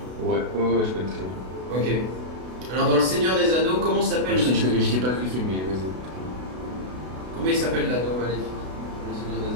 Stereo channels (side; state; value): left; late; 32 ms